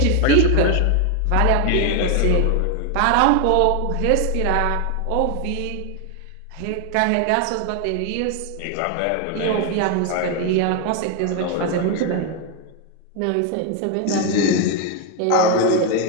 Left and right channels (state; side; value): different; both; correlation 0.01